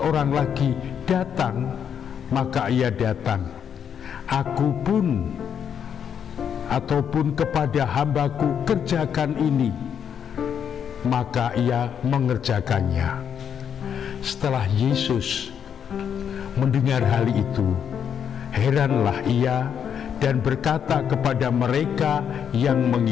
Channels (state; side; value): quieter; right; 8.0 dB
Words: lagi, 'Datang,' maka ia datang. Aku pun ataupun kepada hambaku, 'Kerjakan ini,' maka ia mengerjakannya." Setelah Yesus mendengar hal itu, heranlah ia dan berkata kepada mereka yang